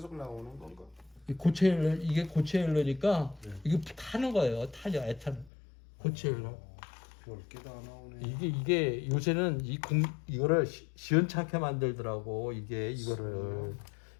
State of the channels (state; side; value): drops out; right; at 5.5 s